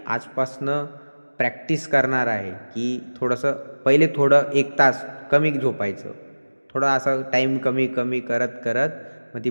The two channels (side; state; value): both; inverted; correlation -1.00